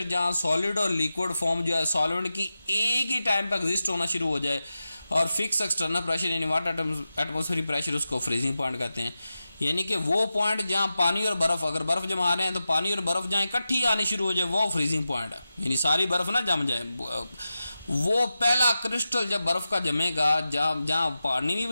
जहाँ सॉलिड और लिक्विड फॉर्म जो है सॉल्वेंट की एक ही टाइम पर एग्जिस्ट होना शुरू हो जाए और फिक्स एक्सटर्नल प्रेशर यानी वाटर एटमॉस्फेरिक प्रेशर, उसको फ्रीजिंग पॉइंट कहते हैं। यानी कि वो पॉइंट जहाँ पानी और बर्फ, अगर बर्फ जमा रहे हैं तो पानी और बर्फ जहाँ इकट्ठी आनी शुरू हो जाए वो फ्रीजिंग पॉइंट है, यानी सारी बर्फ ना जम जाए। वो पहला क्रिस्टल जब बर्फ का जमेगा, जहाँ जहाँ पानी भी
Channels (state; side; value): inverted; both; correlation -0.92